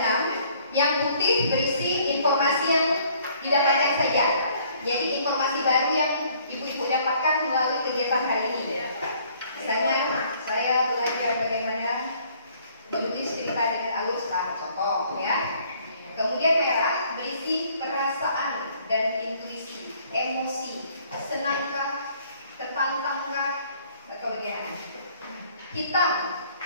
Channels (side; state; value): both; inverted; correlation -0.60